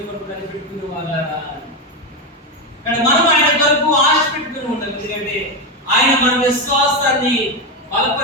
కొరకు కనిపెట్టుకునే వాళ్ళ. కానీ మనం ఆయన కొరకు ఆశ పెట్టుకుని ఉండాలి. ఎందుకంటే ఆయన మన విశ్వాసాన్ని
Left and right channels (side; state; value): both; normal; correlation 0.11